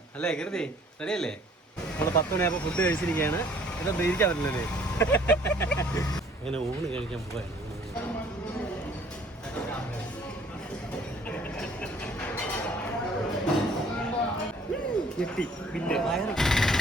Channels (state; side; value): normal; both; correlation 0.57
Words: അല്ലേ? കരുതി റെഡിയല്ലേ? നമ്മൾ 10 മണിയാകുമ്പോൾ ഫുഡ് കഴിച്ചിരിക്കുകയാണ്. ഇതൊന്നും ഇരിക്കാൻ പറ്റില്ലല്ലേ? അങ്ങനെ ഊണ് കഴിക്കാൻ പോവാണ്.